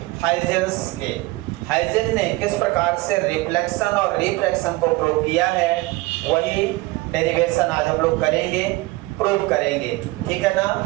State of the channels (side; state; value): left; quieter; 21.4 dB